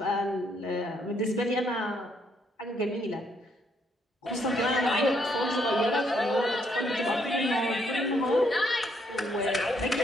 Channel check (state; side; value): normal; both; correlation 0.72